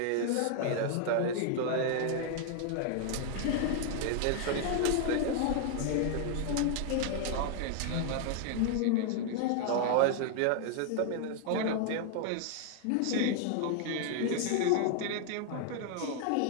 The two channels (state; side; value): different; both; correlation 0.00